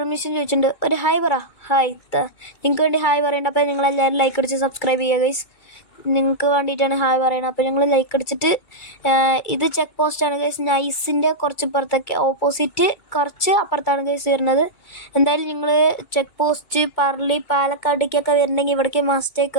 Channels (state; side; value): late; right; 2.3 ms